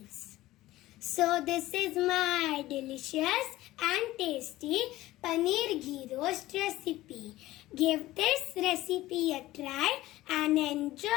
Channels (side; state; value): right; quieter; 16.6 dB